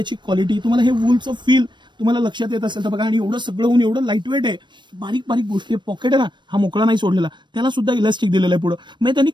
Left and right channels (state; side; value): late; left; 0.22 ms